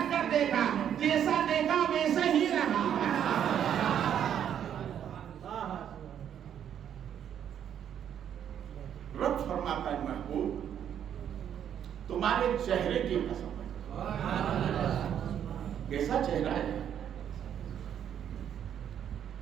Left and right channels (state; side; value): quieter; left; 9.3 dB